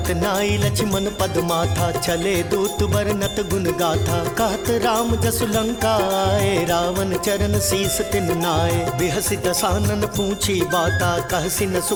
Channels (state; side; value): identical; both; correlation 1.00